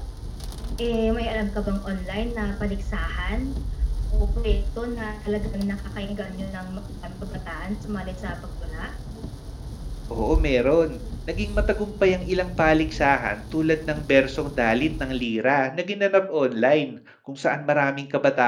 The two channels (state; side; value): identical; both; correlation 1.00